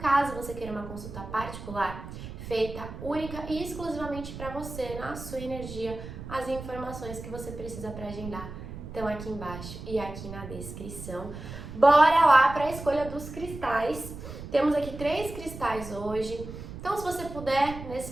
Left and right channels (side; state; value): right; noise; rumble, 11 dB below the sound